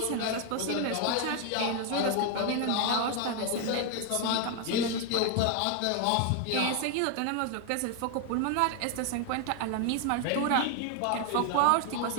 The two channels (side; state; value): both; different; correlation 0.00